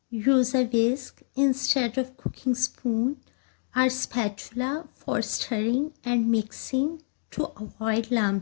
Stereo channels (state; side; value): silent; right; digital silence